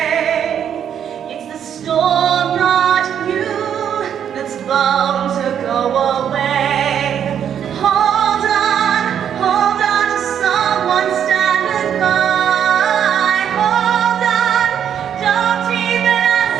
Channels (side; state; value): left; quieter; 8.9 dB